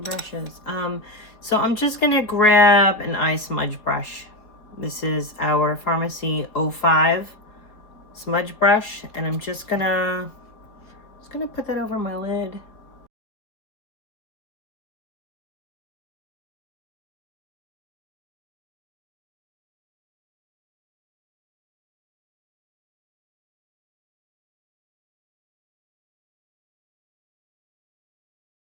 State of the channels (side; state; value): right; late; 4.2 ms